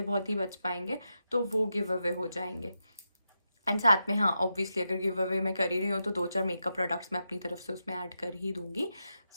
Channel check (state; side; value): inverted; both; correlation -0.87